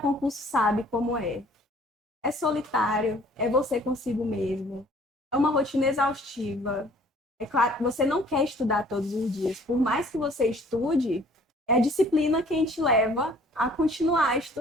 sabe como é. É solitário, é você consigo mesmo, é uma rotina exaustiva. É claro, você não quer estudar todos os dias. Por mais que você estude, é a disciplina quem te leva a continuar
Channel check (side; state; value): both; normal; correlation 0.55